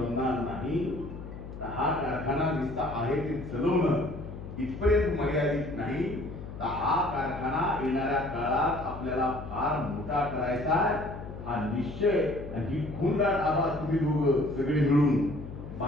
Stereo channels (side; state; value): left; noise; hum, 11 dB below the sound